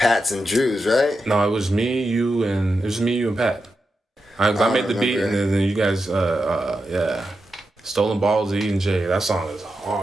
and Drew's, right? No, it was me, you, and Pat. I made the beat, and then you guys, yeah. "Stolen Balls" of E&J. That song is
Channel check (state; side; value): normal; both; correlation 0.88